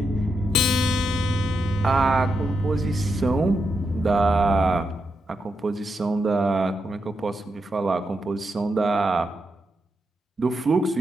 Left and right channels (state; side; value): normal; both; correlation 0.84